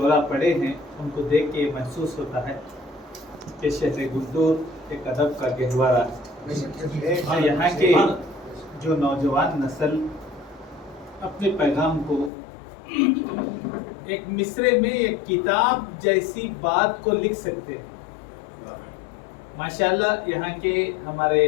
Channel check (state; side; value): drops out; right; at 12.3 s